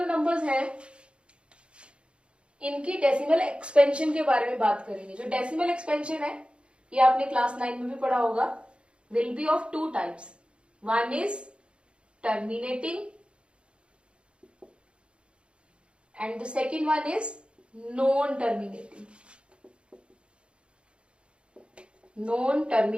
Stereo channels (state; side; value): late; left; 0.057 ms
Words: नंबर्स हैं इनकी डेसिमल एक्सपेंशन के बारे में बात करेंगे. जो डेसिमल एक्सपेंशन है ये आपने क्लास 9 में भी पढ़ा होगा. Will be of 2 types. One is terminating and the second one is non-terminating.